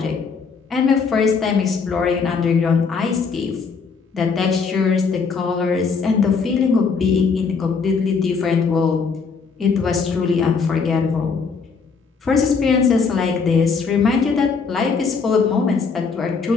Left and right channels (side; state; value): right; quieter; 5.2 dB